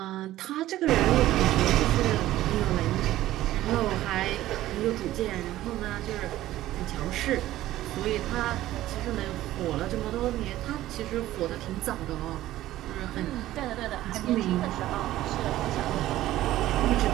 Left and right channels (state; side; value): quieter; left; 14.8 dB